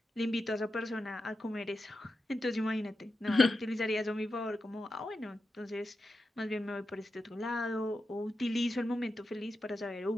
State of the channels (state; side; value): normal; both; correlation 0.89